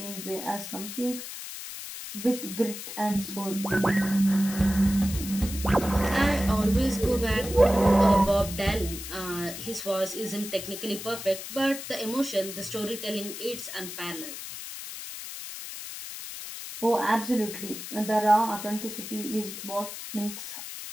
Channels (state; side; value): noise; left; hiss, 9 dB below the sound